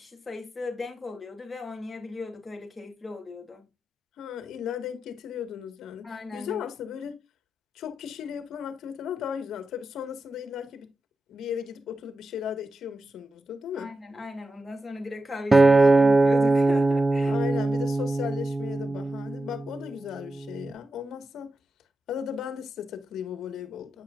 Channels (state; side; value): normal; both; correlation 0.90